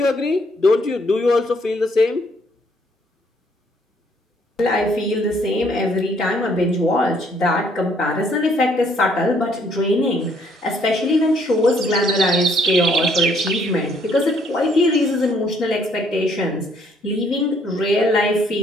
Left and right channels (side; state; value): both; normal; correlation 0.66